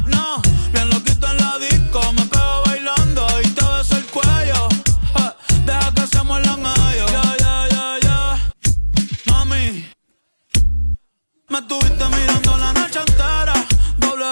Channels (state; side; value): inverted; both; correlation -1.00